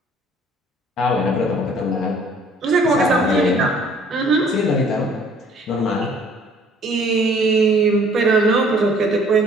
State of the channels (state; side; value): normal; both; correlation 0.57